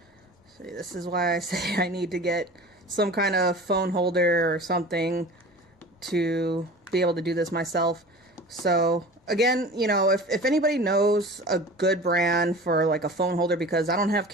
See, this is why I say I need to get some kind of phone holder or something to be able to do this myself. So again, you know, if anybody knows a good brand for like a phone holder, because I don't have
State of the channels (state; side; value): normal; both; correlation 0.38